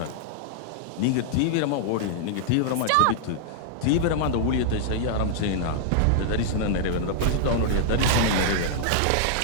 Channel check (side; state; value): both; different; correlation -0.01